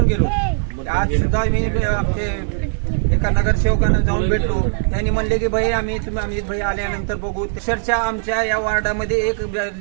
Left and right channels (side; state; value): left; silent; digital silence